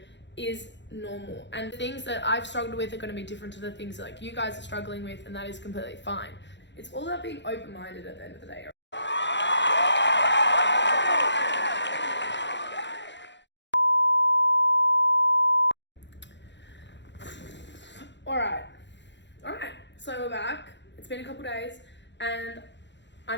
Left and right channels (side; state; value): right; late; 0.52 ms